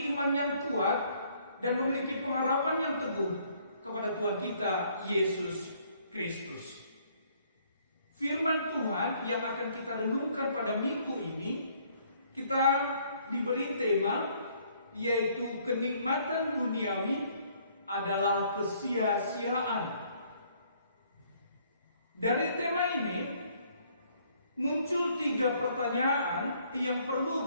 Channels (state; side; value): inverted; both; correlation -0.64